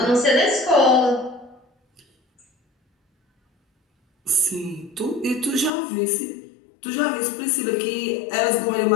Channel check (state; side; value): drops out; right; at 5.7 s